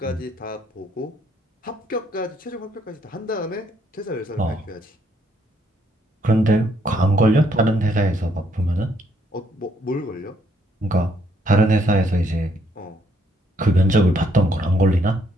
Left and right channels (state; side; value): normal; both; correlation 0.70